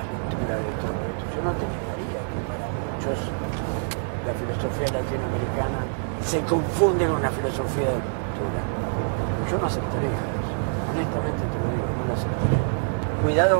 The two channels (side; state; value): left; silent; 61 dB below the other